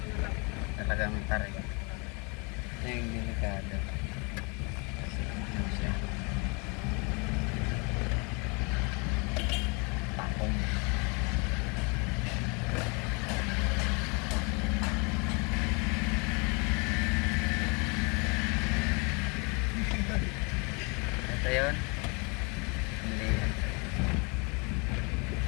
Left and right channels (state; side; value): quieter; right; 31.4 dB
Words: Talagang tarik. Ito yung delikado. Kasi ano siya. Takong. Ito yun.